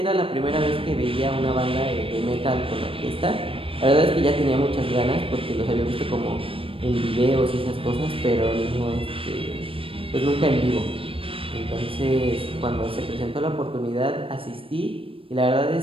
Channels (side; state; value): left; late; 0.26 ms